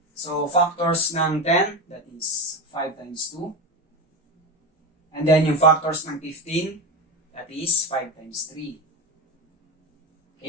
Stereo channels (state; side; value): normal; both; correlation 0.20